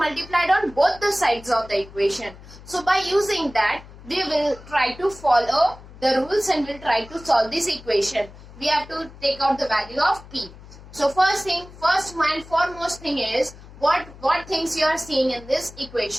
on both the sides of the equation. So by using that, we will try to follow the rules and will try to solve this equation. We have to take out the value of p. So first and foremost thing is what things you are seeing in this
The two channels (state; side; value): noise; left; hum, 19 dB below the sound